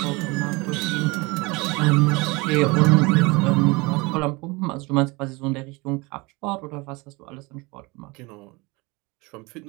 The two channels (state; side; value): quieter; left; 25.4 dB